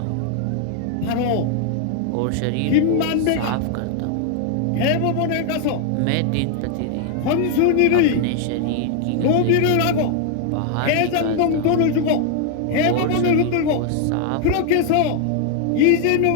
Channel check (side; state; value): both; different; correlation 0.00